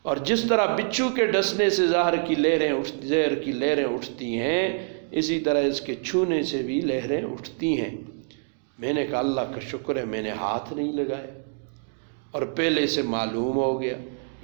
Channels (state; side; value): silent; left; digital silence